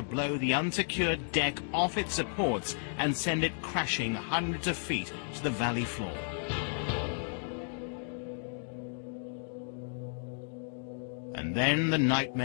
blow the unsecured deck off its supports and send it crashing hundreds of feet to the valley floor. And then the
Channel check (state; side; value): silent; right; digital silence